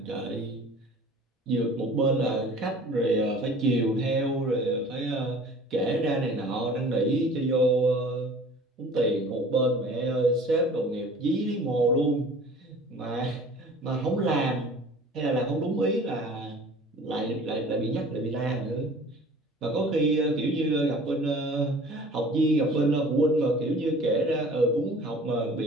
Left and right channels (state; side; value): normal; both; correlation 0.46